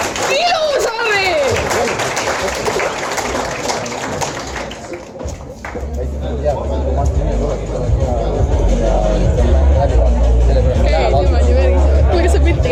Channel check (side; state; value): both; identical; correlation 1.00